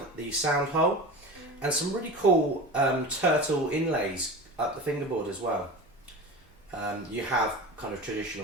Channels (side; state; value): both; normal; correlation 0.31